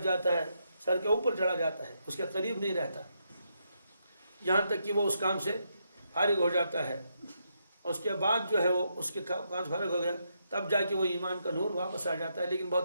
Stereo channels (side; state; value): both; inverted; correlation -0.80